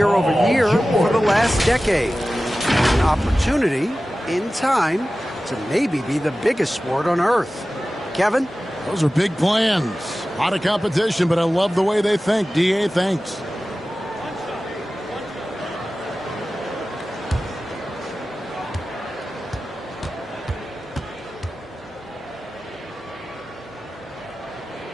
over year for the last decade. An opportunity, in time, to maybe be the biggest sport on earth. Kevin? Those are big plans. A lot of competition, but I love the way they think. D.A., thanks.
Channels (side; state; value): both; normal; correlation 0.95